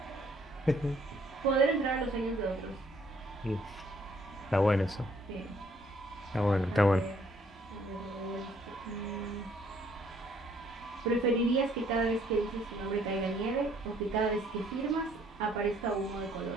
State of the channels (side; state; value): both; normal; correlation 0.64